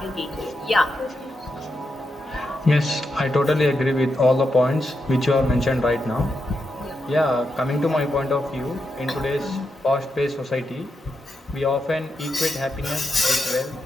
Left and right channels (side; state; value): both; normal; correlation 0.85